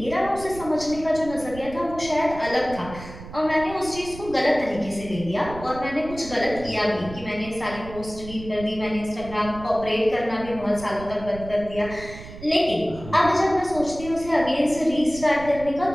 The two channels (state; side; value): noise; right; rumble, 14 dB below the sound